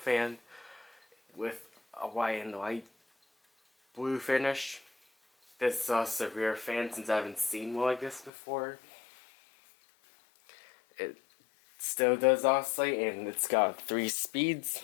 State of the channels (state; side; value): drops out; right; at 8.3 s